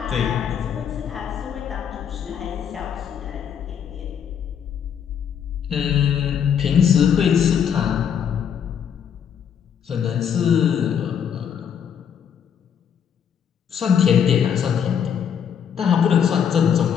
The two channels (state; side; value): quieter; right; 8.2 dB